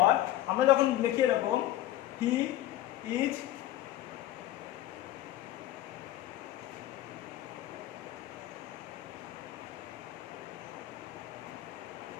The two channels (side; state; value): right; quieter; 14.3 dB